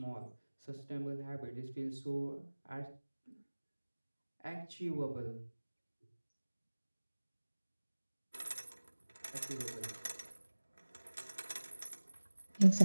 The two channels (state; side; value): inverted; both; correlation -1.00